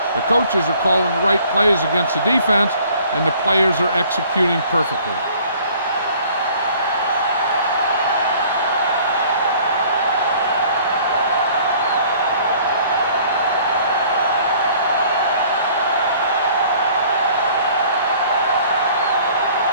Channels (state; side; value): inverted; both; correlation -0.54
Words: The coaches are calling the right plays against the defense, and the players are executing perfectly.